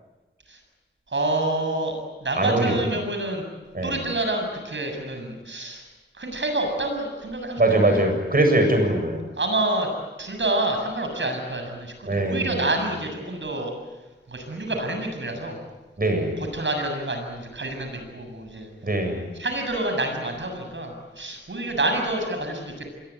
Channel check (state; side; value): normal; both; correlation 0.17